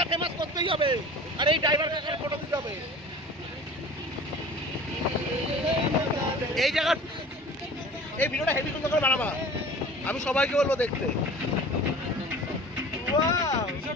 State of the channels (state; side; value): normal; both; correlation 0.42